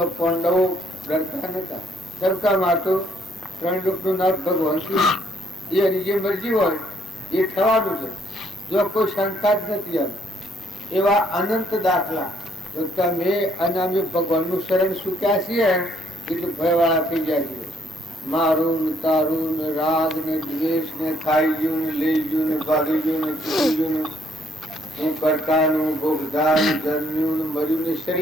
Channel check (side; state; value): both; normal; correlation 0.68